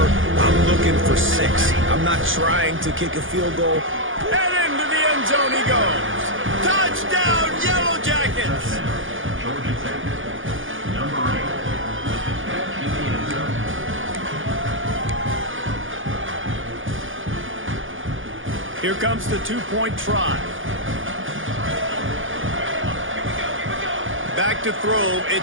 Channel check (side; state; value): left; late; 0.58 ms